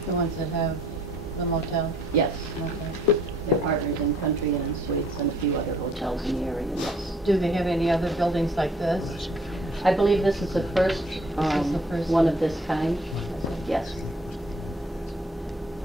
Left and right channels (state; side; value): normal; both; correlation 0.60